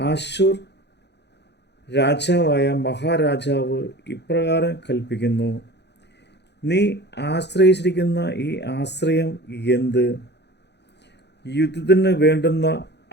രാജാവായ മഹാരാജാവ് ഇപ്രകാരം കൽപ്പിക്കുന്നു, നീ ആശ്രയിച്ചിരിക്കുന്ന ഈ ആശ്രയം എന്ത്? യുദ്ധത്തിന് വേണ്ടുന്ന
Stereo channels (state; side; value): late; right; 0.50 ms